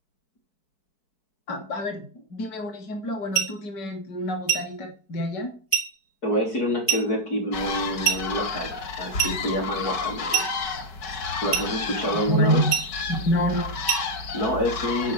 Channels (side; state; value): right; late; 4.6 ms